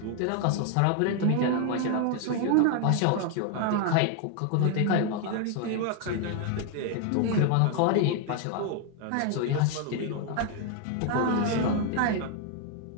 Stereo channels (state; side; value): different; both; correlation 0.01